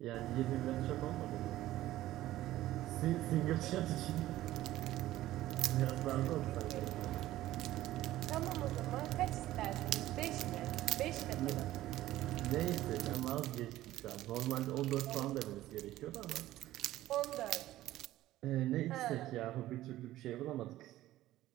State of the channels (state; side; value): quieter; left; 15.0 dB